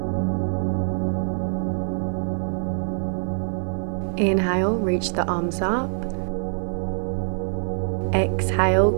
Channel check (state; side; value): silent; left; 56 dB below the other